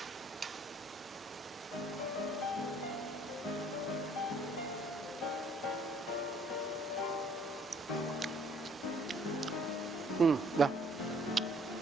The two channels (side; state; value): both; normal; correlation 0.60